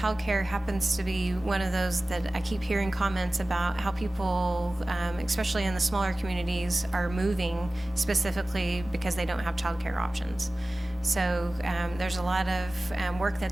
happens to be one of those that I keep hearing comments about how people, especially in the smaller communities, are moving specifically because they don't have childcare options. So there's a lot of work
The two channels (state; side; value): normal; both; correlation 0.97